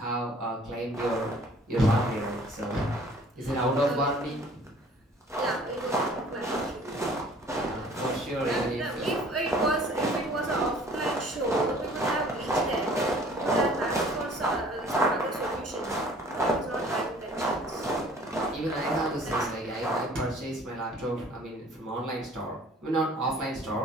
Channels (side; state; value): both; normal; correlation 0.52